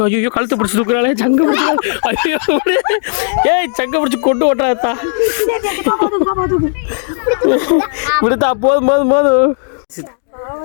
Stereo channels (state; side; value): silent; right; digital silence